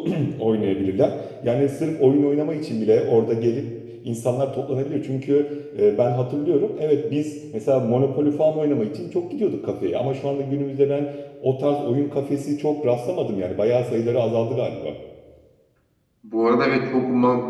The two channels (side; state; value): both; identical; correlation 1.00